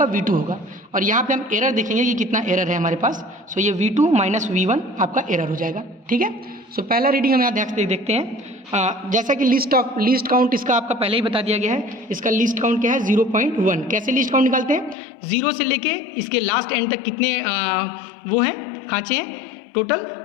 V2 होगा। और यहाँ पे हम एरर देखेंगे कि कितना एरर है हमारे पास। सो ये V2 माइनस V1 आपका एरर हो जाएगा। ठीक है, सो पहला रीडिंग हम यहाँ देखते हैं। जैसा कि लीस्ट काउंट इसका आपका पहले ही बता दिया गया है। इसका लीस्ट काउंट क्या है 0.1। कैसे लीस्ट काउंट निकालते हैं, 0 से लेके इसके लास्ट एंड तक कितने वो हैं, खाँचे हैं टोटल।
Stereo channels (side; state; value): right; drops out; at 15.0 s